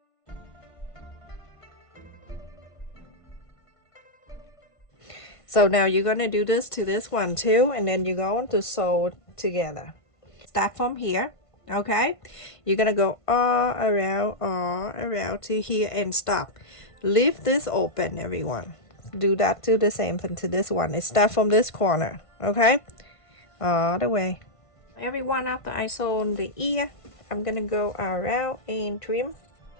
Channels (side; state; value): right; late; 1.5 ms